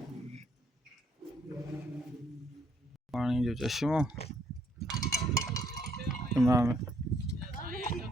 पानी जो चश्मो इमाम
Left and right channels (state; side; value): normal; both; correlation 0.69